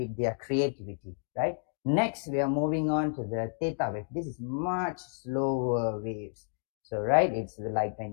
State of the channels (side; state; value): right; silent; digital silence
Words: their creativity, right? Next, we are moving on to the theta wave. This is much slower waves. So, right, it's like